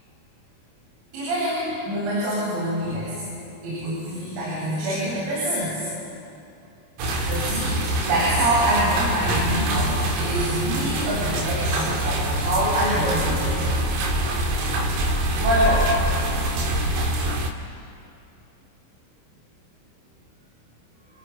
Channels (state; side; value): late; left; 26 ms